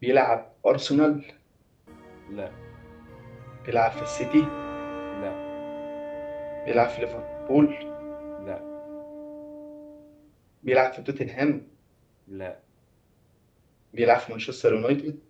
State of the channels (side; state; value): both; identical; correlation 1.00